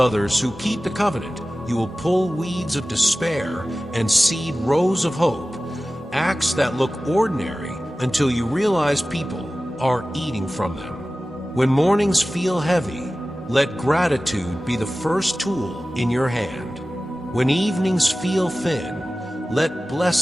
who keep the covenant, you will pull weeds of despair and seed rows of hope, acts that look ordinary until you realize people are eating from them. When mornings feel heavy, let gratitude be the first tool in your hand. When evenings feel thin, let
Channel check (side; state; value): both; normal; correlation 0.96